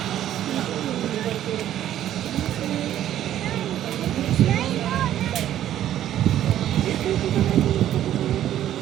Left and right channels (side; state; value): left; quieter; 11.8 dB